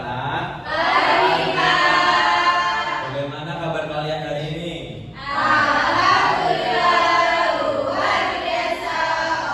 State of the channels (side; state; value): both; identical; correlation 1.00